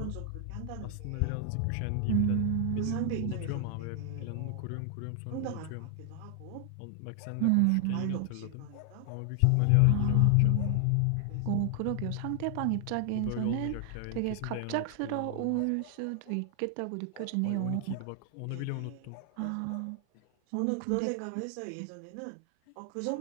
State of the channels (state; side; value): different; both; correlation 0.00